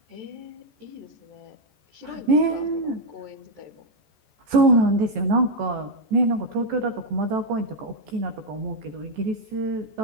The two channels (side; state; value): left; late; 14 ms